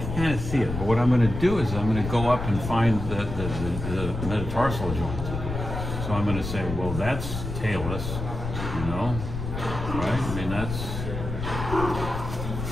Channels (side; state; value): left; noise; rumble, 5 dB below the sound